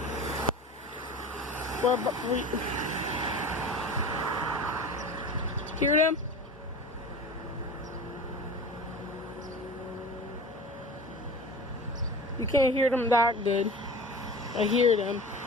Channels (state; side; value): normal; both; correlation 0.35